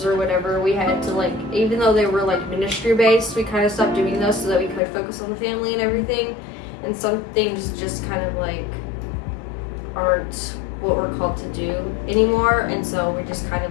or whatever. We had to like, even though they were like ministry based, we kind of stopped doing those so that we could focus on the family and everything. And some things just kind of like aren't what we're called to do anymore, and so we just kind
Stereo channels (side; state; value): right; drops out; at 4.8 s